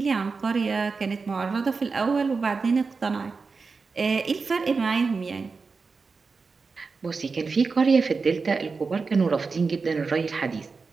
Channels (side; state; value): left; quieter; 4.6 dB